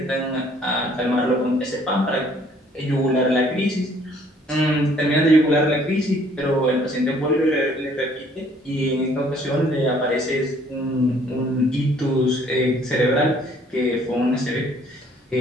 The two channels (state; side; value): normal; both; correlation 0.60